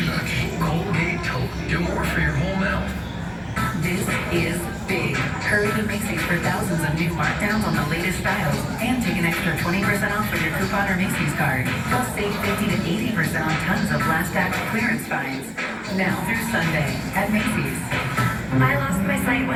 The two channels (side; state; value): both; identical; correlation 1.00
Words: lucky. Colgate Total. Do more for your whole mouth. This is big. Hurry to Macy's for thousands of new markdowns on the latest styles and take an extra 20% off with your coupon or Macy's card. Plus save 50 to 80% on tons of last act clearance finds. Now through Sunday at Macy's. I lost my sight